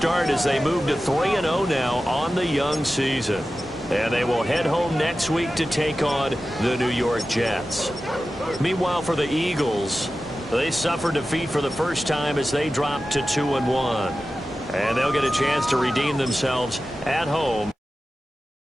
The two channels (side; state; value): both; normal; correlation 0.94